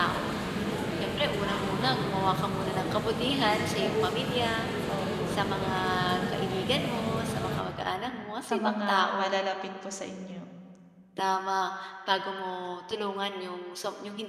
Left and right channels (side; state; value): both; identical; correlation 1.00